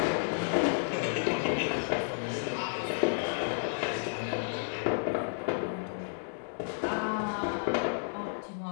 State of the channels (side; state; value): right; silent; digital silence